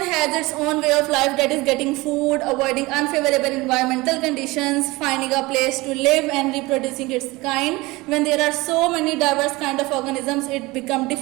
has its own way of life, that is getting food, avoiding unfavorable environmental conditions, finding a place to live and reproducing its kind. When there are so many diverse kind of organisms, it becomes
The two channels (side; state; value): left; quieter; 22.0 dB